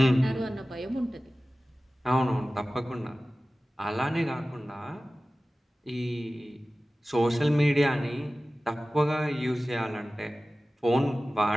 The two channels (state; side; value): normal; both; correlation 0.96